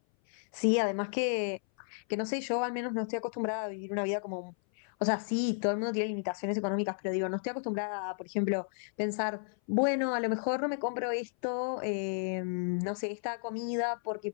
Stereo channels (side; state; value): right; silent; 56 dB below the other